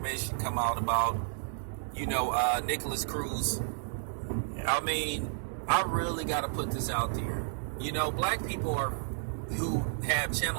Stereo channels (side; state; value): left; silent; digital silence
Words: come out about, Nicholas Cruz. I mean, I really got to put this out there. Black people who have